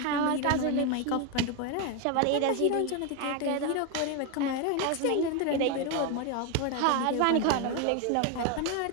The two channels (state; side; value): different; both; correlation 0.01